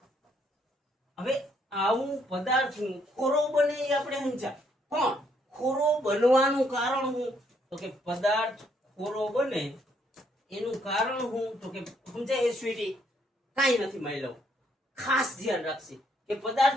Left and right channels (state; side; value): normal; both; correlation 0.71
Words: હવે આવું પદાર્થ ખોરો બને એ આપણે સમજ્યા, પણ ખોરો બનવાનું કારણ શું તો કે પદાર્થ ખોરો બને એનું કારણ શું તો કે સમજાય સ્વીટી કાંઈ નથી માયલો. ખાસ ધ્યાન રાખશે કે